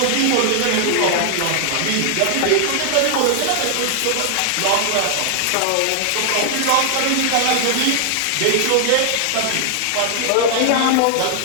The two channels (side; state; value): both; different; correlation 0.00